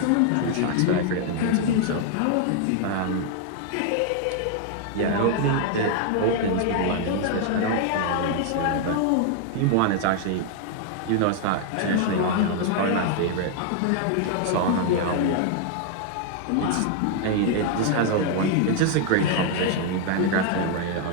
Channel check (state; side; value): different; both; correlation 0.00